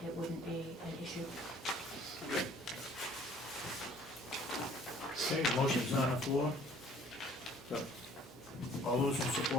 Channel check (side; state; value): both; normal; correlation 0.55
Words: it wouldn't be an issue. Okay, motion's on the floor. So, all those in